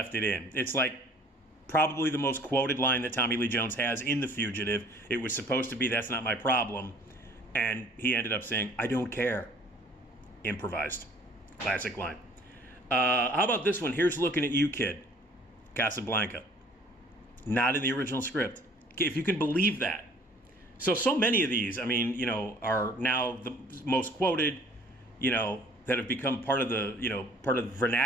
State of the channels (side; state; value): both; normal; correlation 0.54